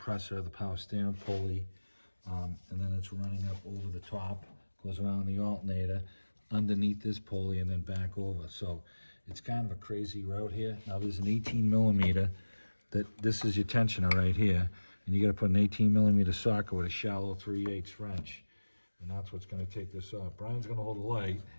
the power steering pulley, and then it's running up over the top, goes around the alternator, underneath this pulley, and then back over. So it's kind of a crazy route here. Now there's an 18 millimeter, this is your tensioner right here, and you got to put an 18 millimeter socket with a shallow 3/8 wrench, and that's what's going to take this off. Brian's going to hold the light,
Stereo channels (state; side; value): inverted; both; correlation -1.00